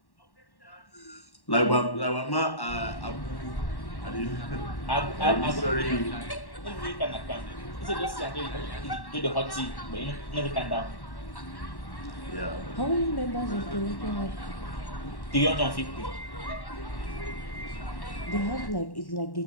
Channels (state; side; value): late; right; 1.1 ms